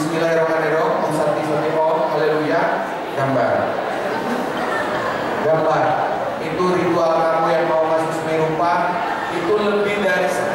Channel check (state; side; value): identical; both; correlation 1.00